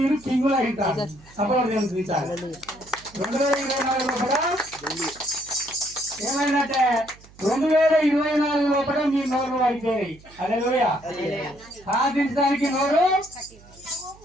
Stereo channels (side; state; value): right; noise; hum, 24 dB below the sound